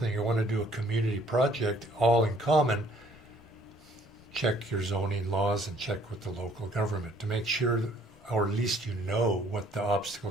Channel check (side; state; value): both; normal; correlation 0.60